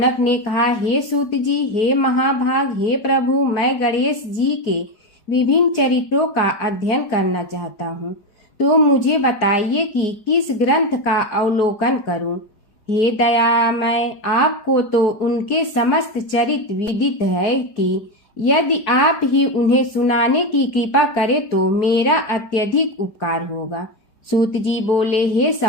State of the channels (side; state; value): right; late; 4.8 ms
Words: ने कहा, हे सूत जी, हे महाभाग, हे प्रभु, मैं गणेश जी के विभिन्न चरित्रों का अध्ययन करना चाहता हूँ, तो मुझे बताइए कि किस ग्रंथ का अवलोकन करूँ। हे दयामय, आपको तो उनके समस्त चरित्र विदित है कि यदि आप ही उन्हें सुनाने की कृपा करें तो मेरा अत्यधिक उपकार होगा। सूत जी बोले, हे